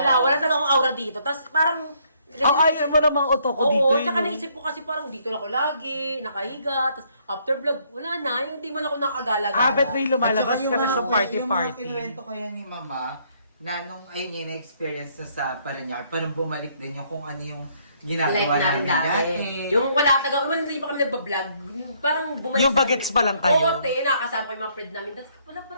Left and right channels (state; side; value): inverted; both; correlation -0.68